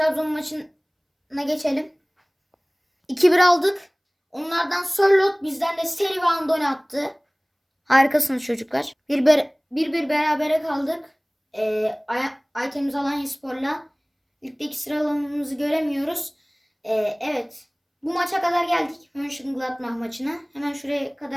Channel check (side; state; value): both; identical; correlation 1.00